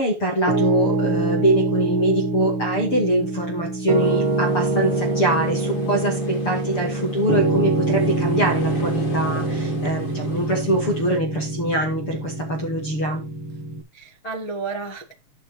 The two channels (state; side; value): late; right; 6.9 ms